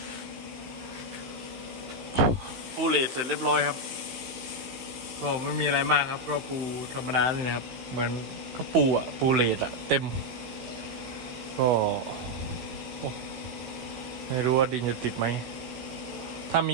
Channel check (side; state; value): left; late; 16 ms